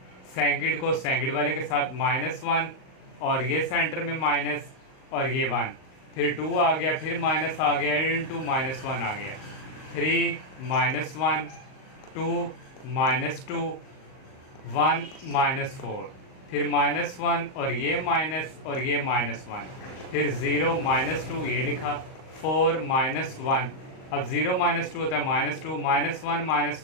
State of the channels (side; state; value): right; late; 38 ms